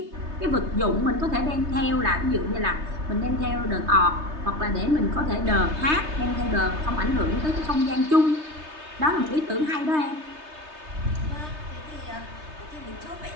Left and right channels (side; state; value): left; late; 3.3 ms